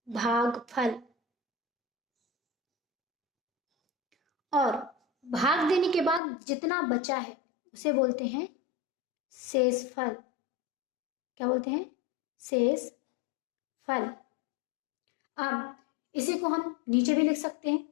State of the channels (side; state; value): right; drops out; at 6.2 s